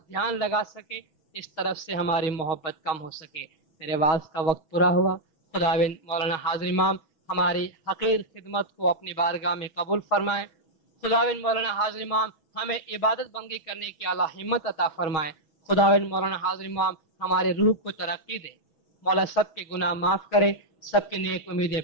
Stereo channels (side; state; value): right; late; 6.3 ms